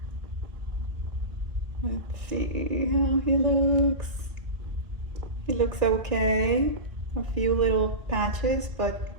Let's see how he looks. He looks okay. A few little patches, but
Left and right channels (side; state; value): left; late; 1.6 ms